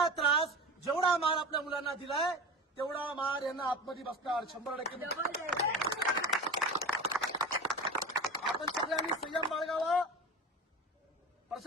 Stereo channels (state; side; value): normal; both; correlation 0.31